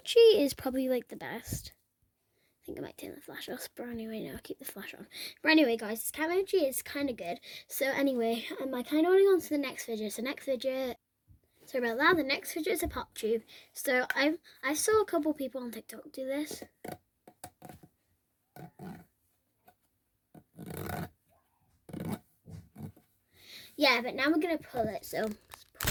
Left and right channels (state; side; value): identical; both; correlation 1.00